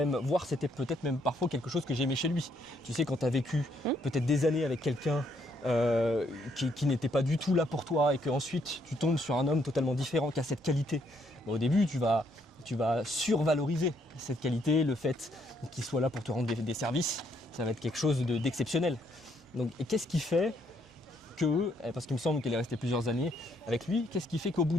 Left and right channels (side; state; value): both; normal; correlation 0.71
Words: voire c'était peut-être même parfois quelque chose que j'aimais chez lui. Tu sais, quand tu as vécu peut-être des années avec quelqu'un qui n'était pas du tout là pour toi et qu'ensuite tu tombes sur un homme totalement différent qui a cette qualité, au début tu vas survaloriser cette qualité, le fait qu'il soit là pour te rendre des services, ça va être quelque chose d'exceptionnel. Donc, et qu'est-ce qui fait que, parce qu'il me semble qu'elle est restée plusieurs années avec lui, qu'est-ce qui fait qu'au bout